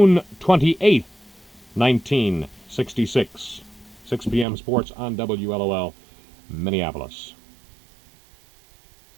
28th, 1966. 6 p.m. sports on WLOL, Minneapolis.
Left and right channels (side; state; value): left; drops out; at 4.5 s